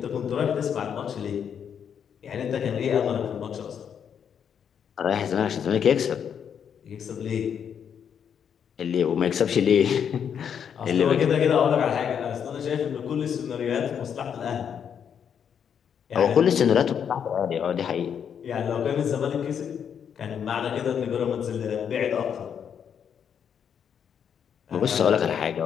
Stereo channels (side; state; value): right; quieter; 7.9 dB